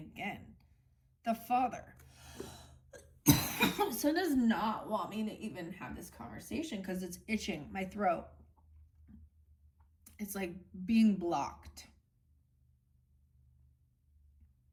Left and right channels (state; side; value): identical; both; correlation 1.00